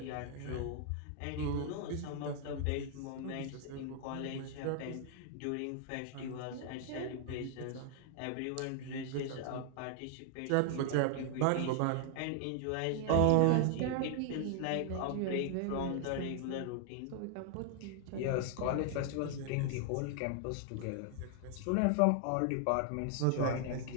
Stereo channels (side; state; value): both; different; correlation 0.00